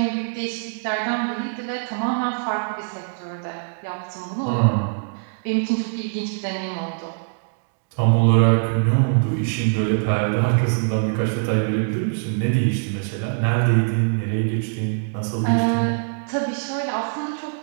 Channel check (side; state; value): left; silent; digital silence